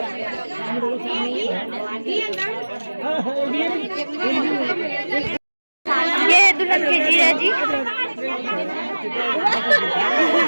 ये है दुल्हन के जीजा जी।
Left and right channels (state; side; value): inverted; both; correlation -1.00